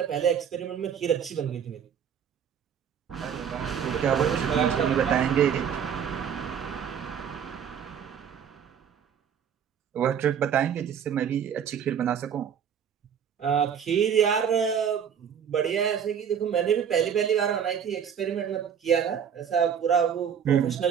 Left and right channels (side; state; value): left; quieter; 8.0 dB